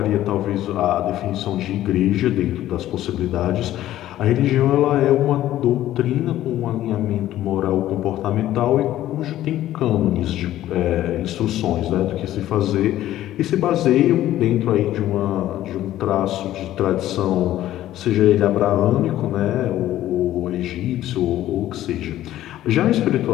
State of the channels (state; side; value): quieter; right; 13.6 dB